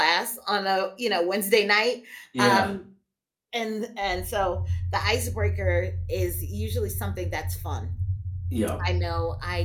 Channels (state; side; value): identical; both; correlation 1.00